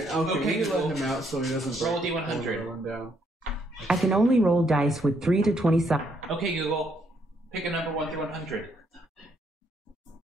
Okay, Okay, we can Google. let him out so he doesn't Roll break a D100. one down. I can only roll dice with 3 to 20 sides. Okay, Google. Pick a number 1 through 100.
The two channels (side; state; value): both; normal; correlation 0.72